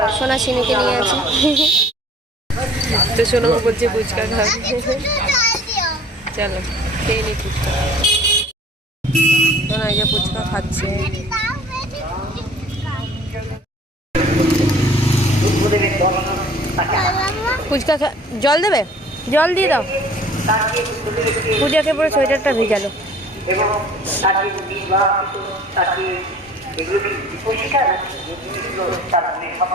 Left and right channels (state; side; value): normal; both; correlation 0.50